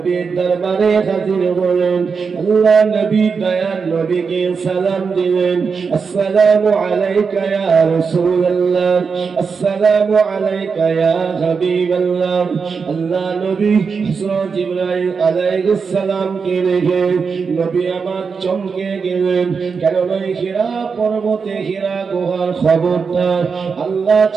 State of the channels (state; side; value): quieter; left; 5.4 dB